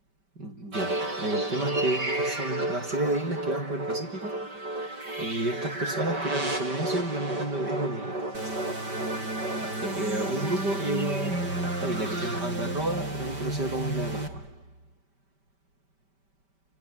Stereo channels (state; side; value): late; left; 5.1 ms